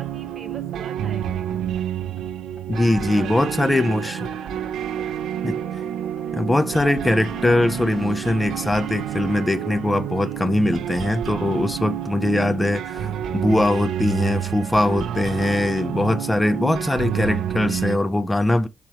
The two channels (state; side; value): normal; both; correlation 0.87